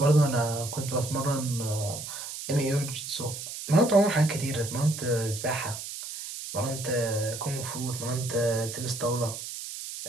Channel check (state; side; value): noise; right; hiss, 8 dB below the sound